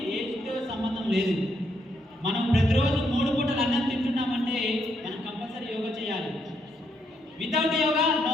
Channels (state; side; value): normal; both; correlation 0.76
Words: ఏజ్తో సంబంధం లేదు. మనం ప్రతిరోజు 3 పూటలు అన్నం తింటున్నామంటే మనం కంపల్సరీ యోగా చేయాలి. Without yoga no